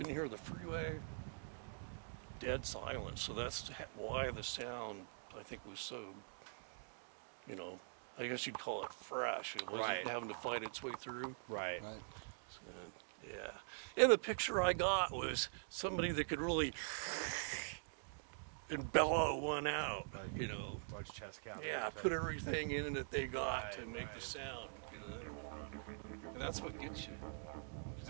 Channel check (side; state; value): left; silent; digital silence